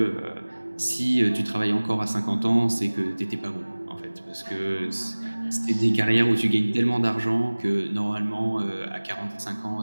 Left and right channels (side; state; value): both; inverted; correlation -1.00